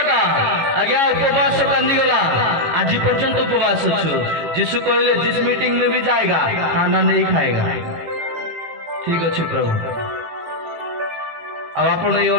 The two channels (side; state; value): left; late; 18 ms